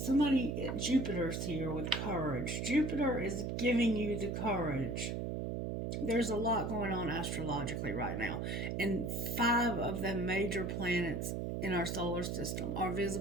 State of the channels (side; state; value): right; noise; hum, 2 dB below the sound